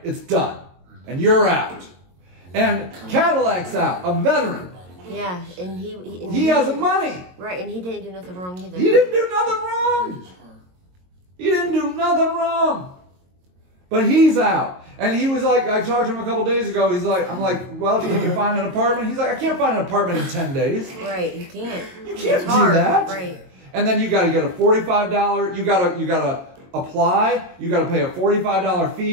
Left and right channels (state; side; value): late; left; 22 ms